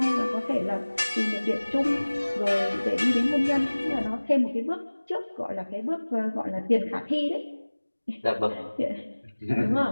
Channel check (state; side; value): inverted; both; correlation -1.00